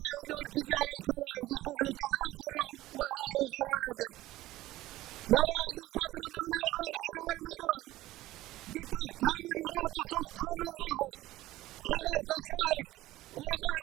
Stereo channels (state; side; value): quieter; left; 16.5 dB